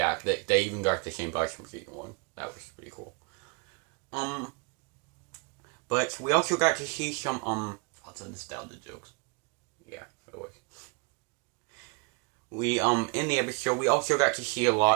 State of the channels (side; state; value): left; quieter; 32.5 dB